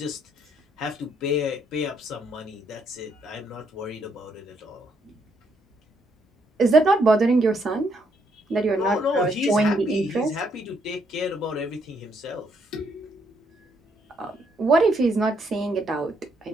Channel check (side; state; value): both; normal; correlation 0.73